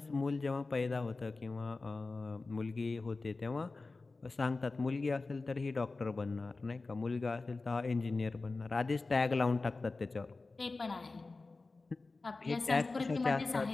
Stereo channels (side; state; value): right; quieter; 3.6 dB